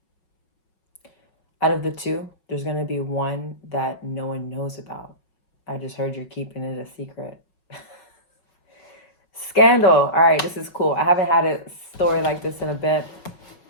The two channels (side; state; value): right; late; 5.4 ms